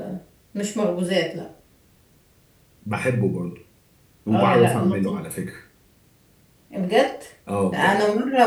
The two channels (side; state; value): both; identical; correlation 1.00